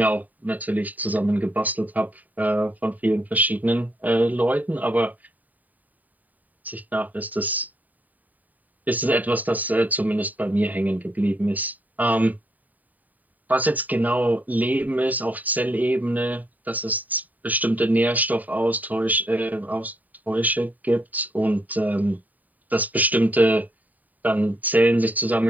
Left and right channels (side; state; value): left; late; 0.081 ms